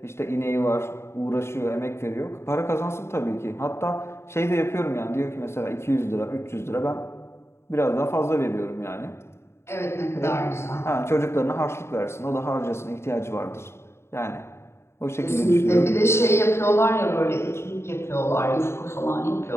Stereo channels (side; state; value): right; late; 0.13 ms